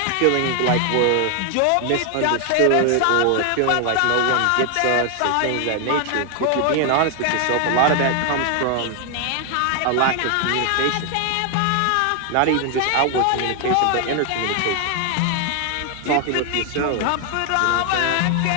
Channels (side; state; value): both; different; correlation 0.00